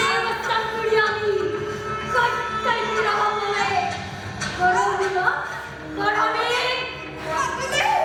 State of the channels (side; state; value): both; identical; correlation 1.00